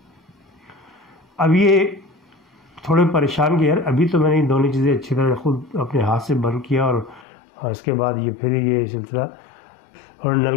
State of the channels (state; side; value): drops out; right; at 7.2 s